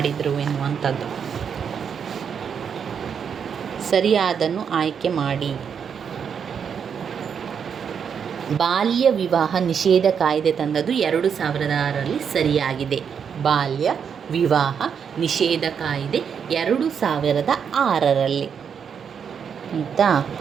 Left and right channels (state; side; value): quieter; left; 7.2 dB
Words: ಎನ್ನುವಂಥದ್ದು. ಸರಿಯಾದನ್ನು ಆಯ್ಕೆ ಮಾಡಿ. ಬಾಲ್ಯ ವಿವಾಹ ನಿಷೇಧ ಕಾಯ್ದೆ ತಂದದ್ದು 2006ರಲ್ಲಿ ಸರಿಯಾಗಿದೆ. ಬಾಲ್ಯ ವಿವಾಹ ನಿಷೇಧ ಕಾಯ್ದೆ 2006ರಲ್ಲಿ ಆಯಿತಾ.